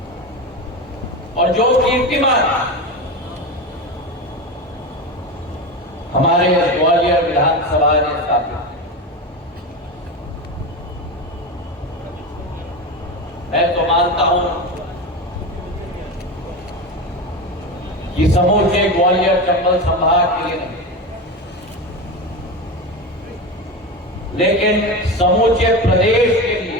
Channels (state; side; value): normal; both; correlation 0.21